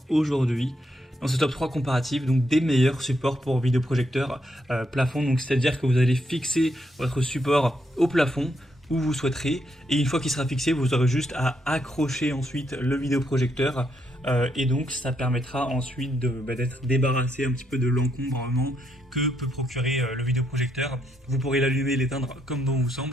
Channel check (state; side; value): normal; both; correlation 0.77